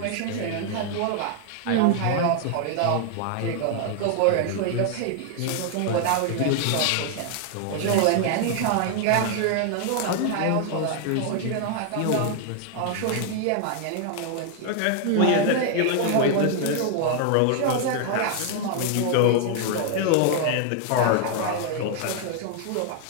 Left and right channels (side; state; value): both; different; correlation 0.00